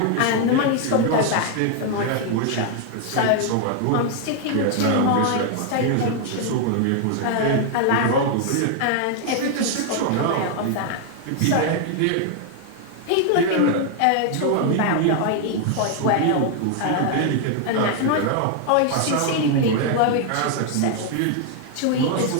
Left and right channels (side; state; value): both; different; correlation 0.00